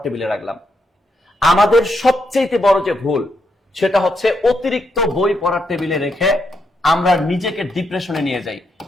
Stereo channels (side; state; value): both; normal; correlation 0.80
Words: টেবিলে রাখলাম? আমাদের সবচেয়ে বড় যে ভুল সেটা হচ্ছে অতিরিক্ত বই পড়ার টেবিলে রেখে আমরা নিজেকে ডিপ্রেশনে নিয়ে যাই